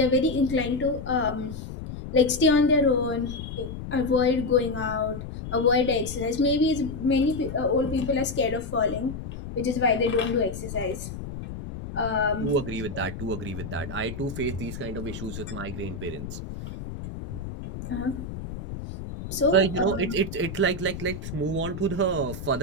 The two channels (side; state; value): left; noise; rumble, 9 dB below the sound